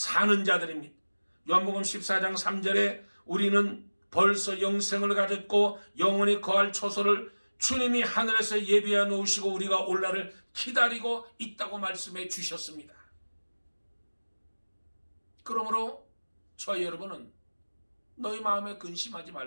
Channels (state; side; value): inverted; both; correlation -1.00